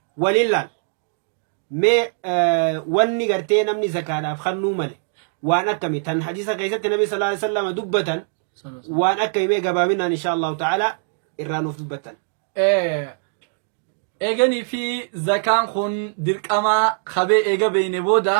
ولله ما واني قرتي نمني زكاة خنو مالي وان أكمي تن حديث قيسة النبي صلى الله عليه وسلم دبة وان أكمي قبامنا إن شاء الله تعالى إرانو في دبة إيغاني في زكاة خن ديرك أما خبي إيغا بين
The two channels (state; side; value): silent; left; digital silence